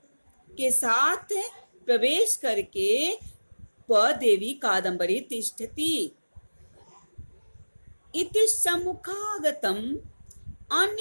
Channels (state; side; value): inverted; both; correlation -1.00